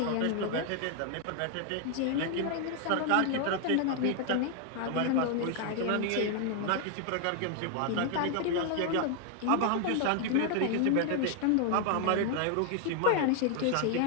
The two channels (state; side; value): different; both; correlation 0.00